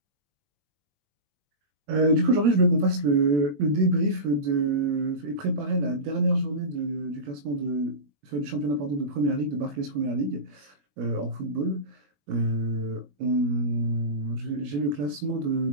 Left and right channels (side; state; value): left; late; 21 ms